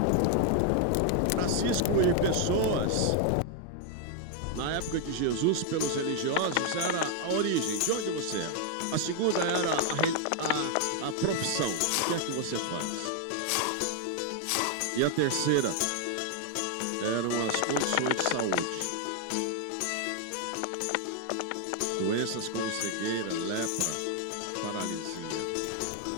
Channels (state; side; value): different; both; correlation 0.00